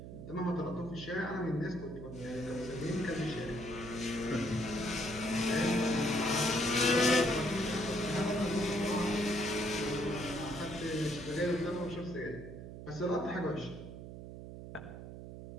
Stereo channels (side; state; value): right; noise; hum, 11 dB below the sound